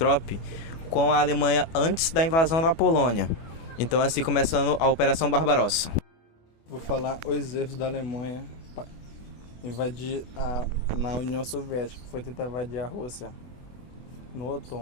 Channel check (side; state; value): right; late; 24 ms